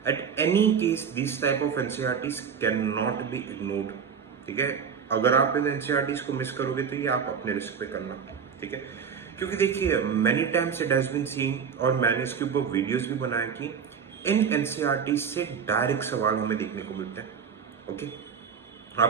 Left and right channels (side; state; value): left; quieter; 6.8 dB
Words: At any case this type of NCERTs can not be ignored. ठीक है, अगर आप इन एनसीईआरटीज को मिस करोगे तो ये आप अपने रिस्क पे करना। ठीक है, क्योंकि देखिए many times it has been seen और मैंने इसके ऊपर वीडियोस भी बनाए कि इन एनसीईआरटीज से डायरेक्ट सवाल हमें देखने को मिलते हैं। ओके,